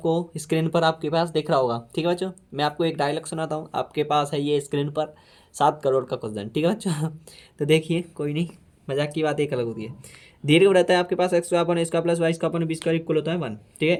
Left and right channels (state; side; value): identical; both; correlation 1.00